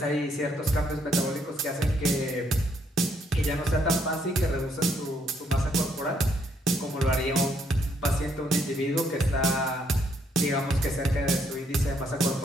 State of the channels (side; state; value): both; normal; correlation 0.71